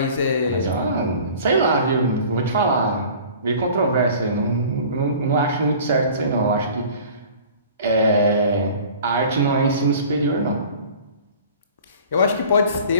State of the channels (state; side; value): inverted; both; correlation -0.45